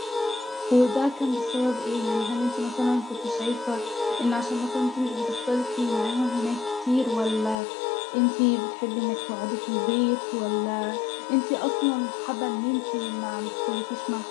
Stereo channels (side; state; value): right; drops out; at 7.6 s